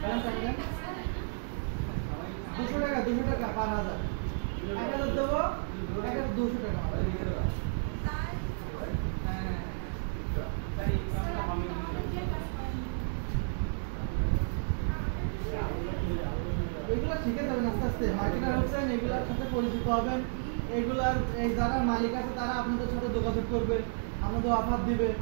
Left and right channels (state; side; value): silent; left; digital silence